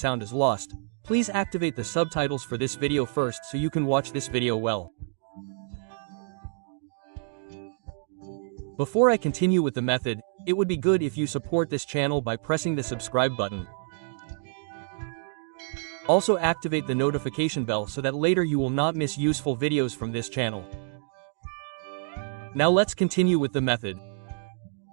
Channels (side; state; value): left; silent; digital silence